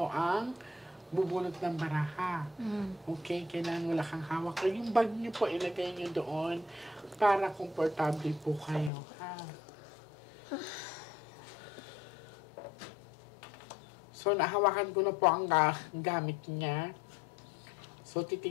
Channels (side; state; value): right; drops out; at 8.9 s